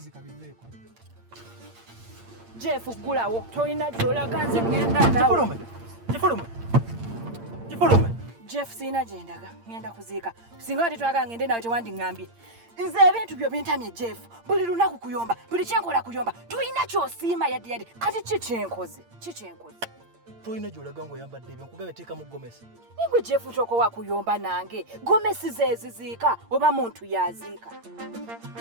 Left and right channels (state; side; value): late; left; 8.7 ms